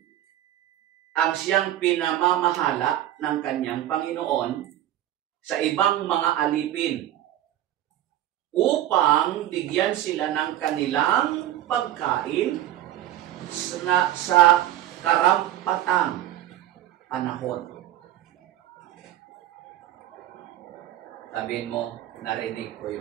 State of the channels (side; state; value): left; quieter; 13.0 dB